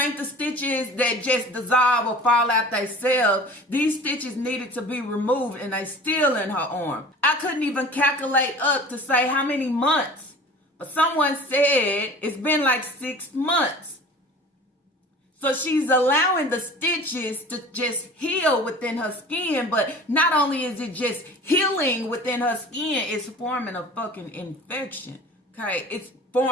the stitches that just dissolve or fall out themselves. These stitches needed to be removed, and they still in her arm. I couldn't even calculate up to say how many months. But someone said it's been like 6 months. So she's allowing the stitches to just heal within her skin. But not only is it just healing within her skin, it's forming a fucking infection. Okay? It's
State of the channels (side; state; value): both; normal; correlation 0.42